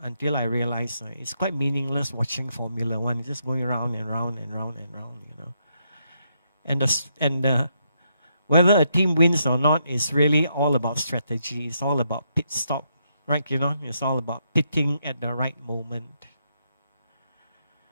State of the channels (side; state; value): both; inverted; correlation -0.78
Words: until I realized it's quite meaningless watching Formula One. It's just going round and round and round and round, you know. And whether a team wins or not is really all about strategy. It's all about pit stop, right? You know, it's all about pitting at the right moment.